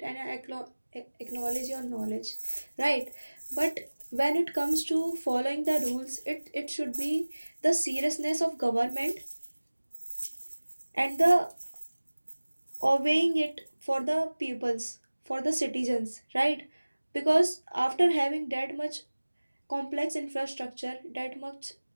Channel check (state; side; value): inverted; both; correlation -1.00